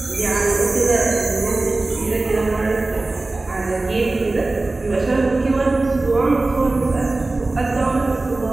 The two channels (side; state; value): left; quieter; 3.1 dB